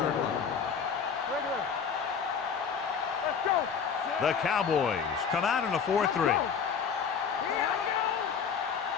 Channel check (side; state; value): right; quieter; 6.6 dB